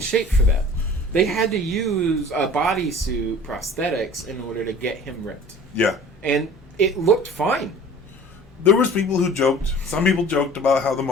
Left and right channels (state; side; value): normal; both; correlation 0.44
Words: shape for that. They had to use bodysuit prosthetics in order to get him ripped. Yeah. And it looked fine. There was people who joked. Some people joked about how the